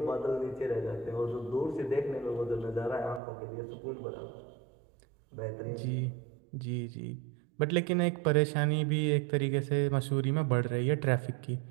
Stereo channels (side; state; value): left; drops out; at 3.2 s